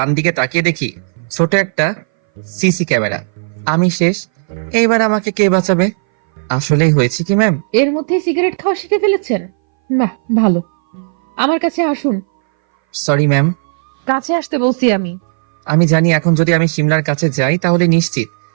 দিকে তাকিয়ে দেখি ছোট একটা সিসি ক্যামেরা। আমি শেষ। এইবার আমাকে কে বাঁচাবে? আসলেই হয়েছে কি ম্যাম? এর মধ্যে সিগারেট খাওয়া শিখে ফেলেছেন? বাহ, ভালো। আমার কাছে আসুন। Sorry ma'am. কাছে আসতে বলছি আমি। আমি জানি এখন যদি আমি শিমলার কাছে যাই তাহলে নিশ্চিত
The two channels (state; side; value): silent; left; 61 dB below the other